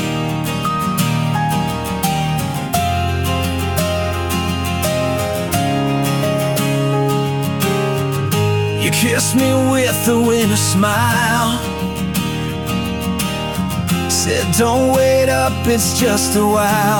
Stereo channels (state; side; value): identical; both; correlation 1.00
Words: You kissed me with a winter smile, said don't wait up, it's just a